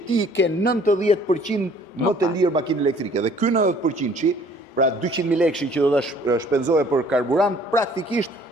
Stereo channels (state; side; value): normal; both; correlation 0.56